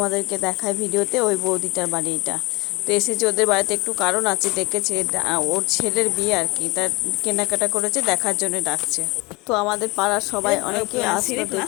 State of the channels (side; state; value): right; quieter; 24.8 dB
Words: দেখায় ভিডিওতে, ওই বৌদিটার বাড়ি এটা। তো এসেছে ওদের বাড়িতে, একটু কারণ আছে, ডেকেছে ওর ছেলের বিয়ে আর কি, তার কেনাকাটা করেছে, দেখার জন্য ডাকছে। তো আমাদের পাড়ার সবাই অনেকে আসলো